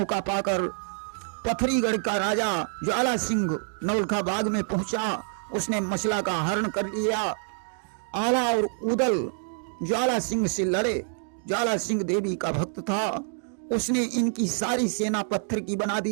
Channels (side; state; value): left; silent; digital silence